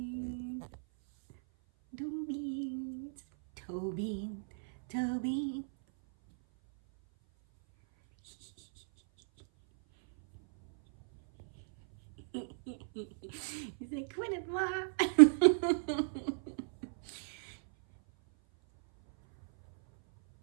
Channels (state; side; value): silent; left; 55 dB below the other